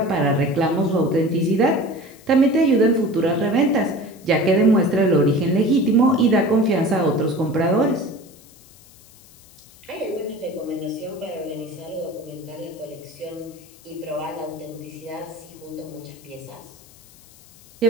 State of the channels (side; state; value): left; noise; hiss, 25 dB below the sound